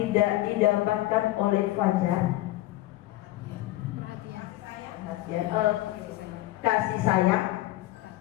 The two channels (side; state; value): right; quieter; 16.3 dB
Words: didapatkan oleh Fajar, kasih sayang,